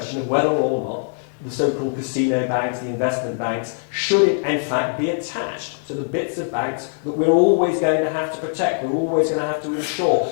of whether or not the so-called casino banks, the investment banks, should in fact be attached to the bits of banks that we're always going to have to protect, we're always going to have to insure,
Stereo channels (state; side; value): silent; right; 56 dB below the other